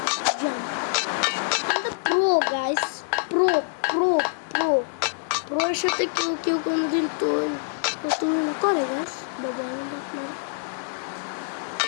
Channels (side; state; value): right; silent; digital silence